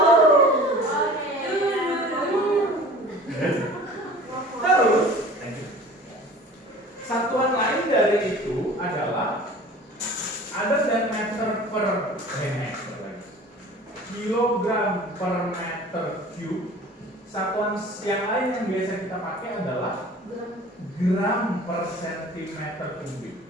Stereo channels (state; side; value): normal; both; correlation 0.43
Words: Terus, satuan lain dari itu adalah ada dan meter per kilogram per meter cube. Satuan yang lain yang biasa kita pakai adalah gram per sentimeter kubik.